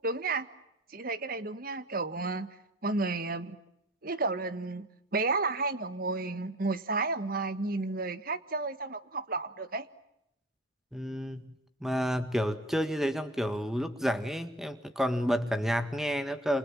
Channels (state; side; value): normal; both; correlation 0.42